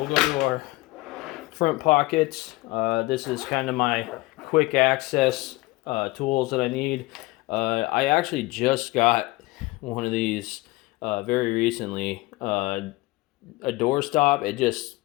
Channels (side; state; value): right; quieter; 20.9 dB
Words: go to our front pockets. This is kind of my quick access tools that I need. I actually just got one of these very recently. A door stop.